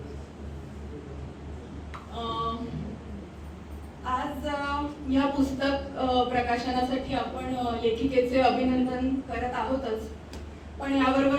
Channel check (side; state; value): both; identical; correlation 1.00